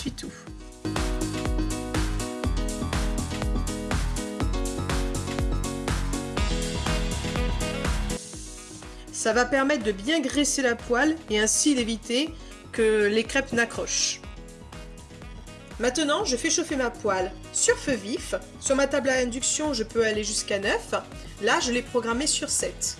Ça va permettre de bien graisser la poêle et ainsi d'éviter que les crêpes n'accrochent. Maintenant, je fais chauffer ma poêle sur feu vif. Sur ma table à induction, je peux aller jusqu'à 9. Là, je l'ai programmée sur 7.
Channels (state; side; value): identical; both; correlation 1.00